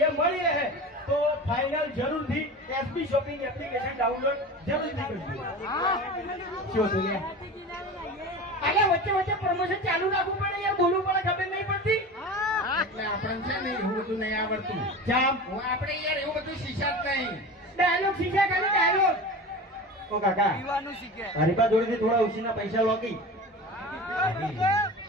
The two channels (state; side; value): normal; both; correlation 0.32